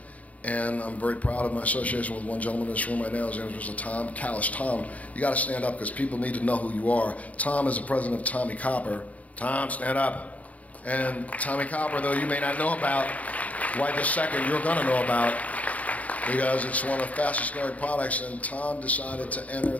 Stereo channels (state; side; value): late; right; 0.070 ms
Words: And I'm very proud of my association with one gentleman in this room right now. His name is Mr. Tom Callis. Tom, you got to stand up because people need to know who you are. Tom is the president of Tommy Copper. Tom, stand up. And Tommy Copper, though you may not know about, right this second you're going to know about, because it's one of the fastest growing products. And Tom decided to enter